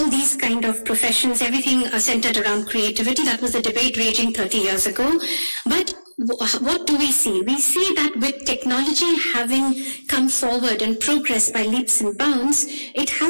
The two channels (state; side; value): inverted; both; correlation -1.00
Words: these kind of professions, everything centered around creativity. That was the debate raging 30 years ago. But what do we see? We see that with technology having come forward and progressed by leaps and bounds, it